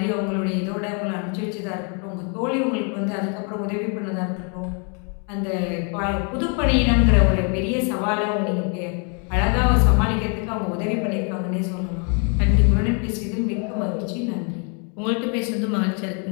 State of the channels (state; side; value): quieter; right; 38.0 dB